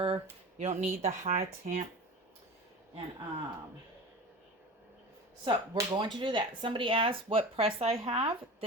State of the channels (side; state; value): both; normal; correlation 0.33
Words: you don't need the high temp, and so we're going to do that. Somebody asked what press I have.